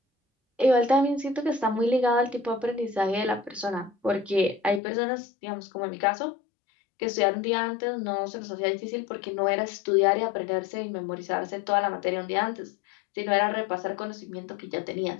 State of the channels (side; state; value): right; drops out; at 4.8 s